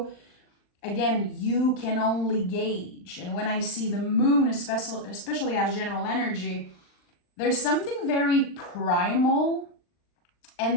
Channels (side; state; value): right; late; 39 ms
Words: Again, you can only gauge. And when I see the moon, especially as general energy, there's something very primal,